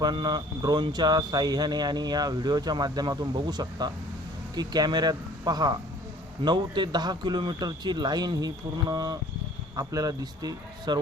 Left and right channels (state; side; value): normal; both; correlation 0.53